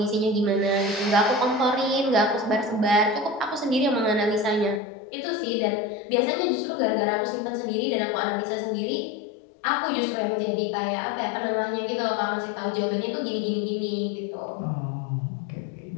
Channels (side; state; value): right; drops out; at 4.8 s